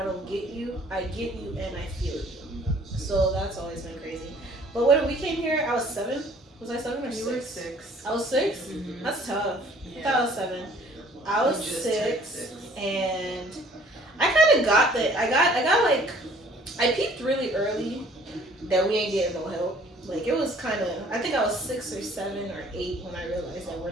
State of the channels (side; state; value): both; normal; correlation 0.55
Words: don't get you. I get you and I feel you. So that's always been crazy. But when we came here, I was 7. Was I 7 or 6? You were 6. I was 6? Mm-hmm. That's tough. Yeah. I thought I was 7. I was You just 6, turned 6. and I got like, I peeped really early that we ain't getting no help. Like it was kind of, I think I was 6 or 7 or 8 when I realized that we're